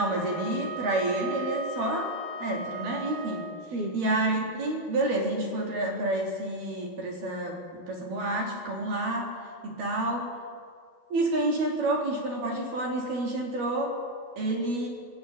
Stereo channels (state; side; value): late; left; 12 ms